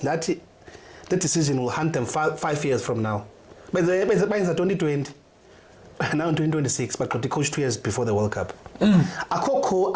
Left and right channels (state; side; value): identical; both; correlation 1.00